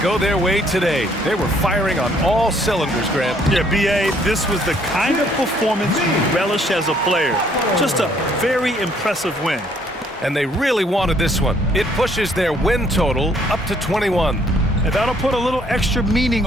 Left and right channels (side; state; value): both; normal; correlation 0.64